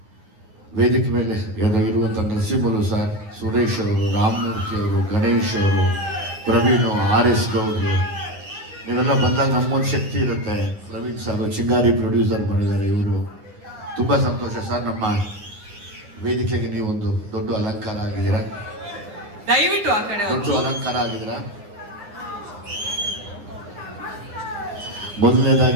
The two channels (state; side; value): late; left; 9.6 ms